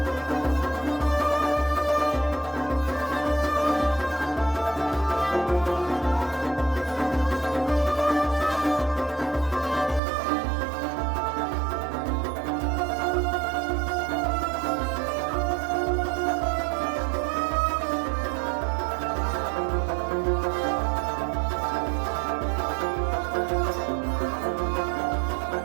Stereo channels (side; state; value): left; drops out; at 10.0 s